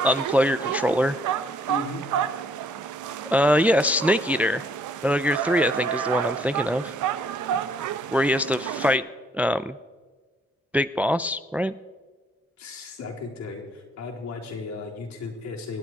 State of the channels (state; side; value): normal; both; correlation 0.64